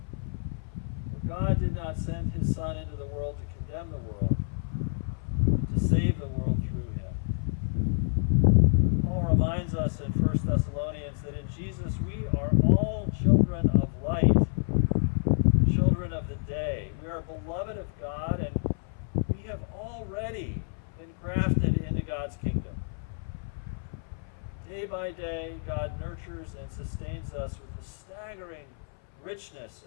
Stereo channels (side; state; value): right; silent; 59 dB below the other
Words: God did not send his Son into the world to condemn the world, but to save the world through him. Paul reminds us in 1 Thessalonians that in Jesus we are all children of light, children of the day. We are beloved of God, and we have already been grafted into God's kingdom. Day by day, God nurtures and sustains us with the staggering richness